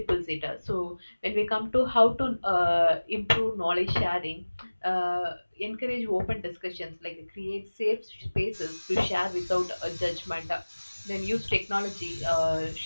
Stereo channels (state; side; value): inverted; both; correlation -1.00